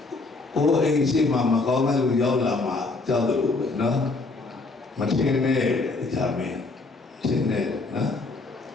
အိုးအိမ်ရှိမှမကောင်းတဲ့လူရောက်လာမှကြောက်တယ်လို့ပဲနော်မထင်နဲ့တရားမင်းထင်နဲ့နော်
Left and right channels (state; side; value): quieter; right; 3.5 dB